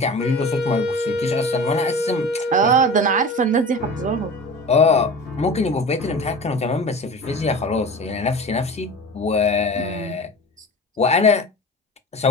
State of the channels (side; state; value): both; normal; correlation 0.35